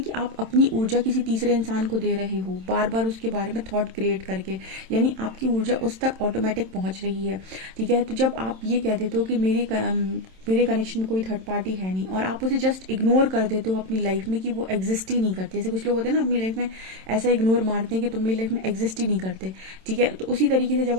आप अपनी ऊर्जा किसी तीसरे इंसान को दे रहे हो, बार बार उसके बारे में थॉट क्रिएट करके। यानी आपकी ऊर्जा उस तक ऑटोमेटिक पहुंच रही है। ठीक है, तो जब आप ये कह देते हो कि मेरे कनेक्शन में कोई थर्ड पार्टी है नहीं, और आप उसे जस्ट इग्नोर कर देते हो अपनी लाइफ में कि वो एग्जिस्ट ही नहीं करती। जैसे कुछ लोग होते हैं ना अपनी लाइफ में ऐसा इग्नोर मारते हैं कि तुम मेरी लाइफ में एग्जिस्ट ही नहीं करते, ठीक है। तो उसी तरीके से जब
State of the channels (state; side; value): late; left; 27 ms